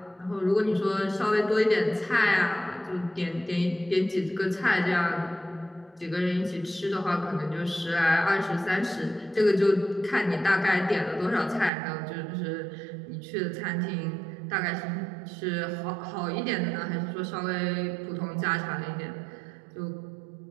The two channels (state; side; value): drops out; left; at 11.7 s